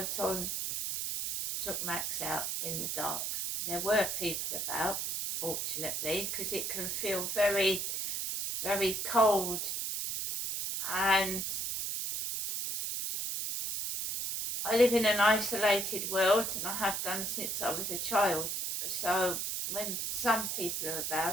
on, took Max out in the dark. There were people about, fortunately, because it can feel very, very cold, and I live in an isolated world, and I have done since I was a child. So when some people are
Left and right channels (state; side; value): noise; right; hiss, 2 dB below the sound